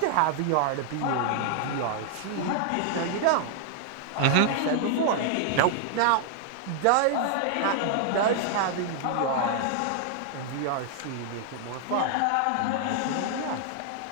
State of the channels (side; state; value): both; different; correlation 0.00